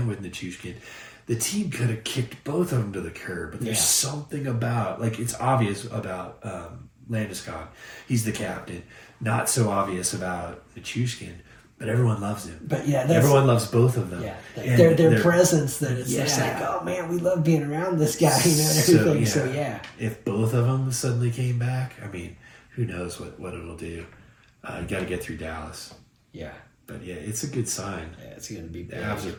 with Nichushkin, the team could have kicked both of them to the curb. But there's something about, like, it's obvious about Landeskog. He's the captain. Not so obvious about Nichushkin. But everyone loves him. But everyone loves both of them. Yeah, their presence. That it's just like, oh man, we love being around this guy, and everything. So if both of them suddenly came back, I mean, who knows what it'll do? You got to get through Dallas. Yeah. But yeah, it's a good sign. Yeah, it's going to be big. The Avs are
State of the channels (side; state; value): both; identical; correlation 1.00